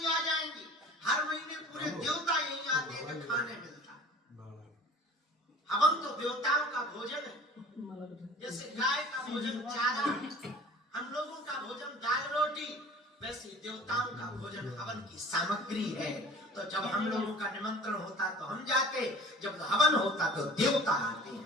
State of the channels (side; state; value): both; normal; correlation 0.45